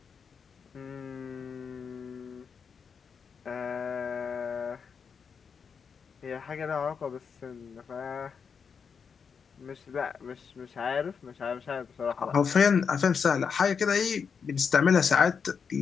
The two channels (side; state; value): right; quieter; 6.2 dB